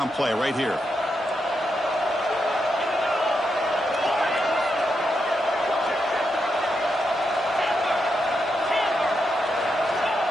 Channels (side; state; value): both; normal; correlation 0.84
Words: play right here.